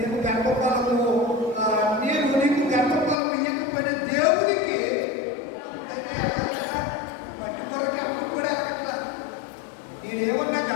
గర్భఫలము నేను నీకు గర్భఫలం ఇవ్వకపోయిన దేవుడికి మట్టి కొరకి అప్పుడు కూడా వెళ్ళగల నేనేమన్నా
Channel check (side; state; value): right; drops out; at 3.2 s